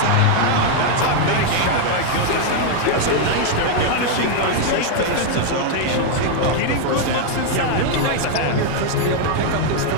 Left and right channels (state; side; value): different; both; correlation 0.00